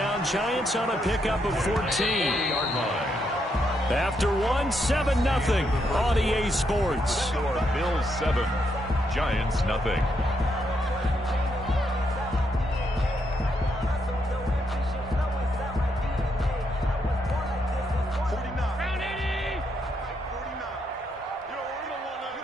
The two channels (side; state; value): both; normal; correlation 0.78